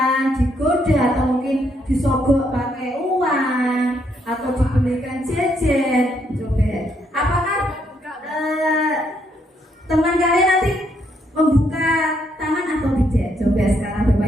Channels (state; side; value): normal; both; correlation 0.74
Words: digoda, atau mungkin disogok pakai uang, atau dibelikan jajan. Coba, apakah teman kalian nanti membuka tangan atau tidak? Coba sekarang